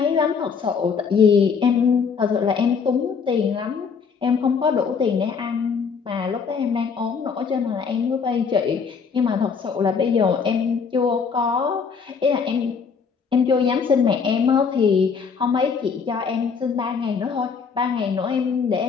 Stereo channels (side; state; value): right; quieter; 5.8 dB